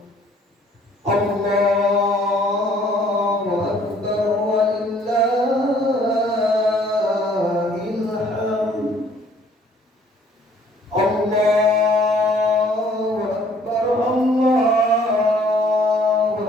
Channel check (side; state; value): both; normal; correlation 0.59